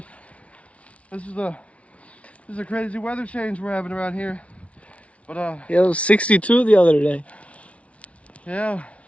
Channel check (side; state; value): right; late; 0.064 ms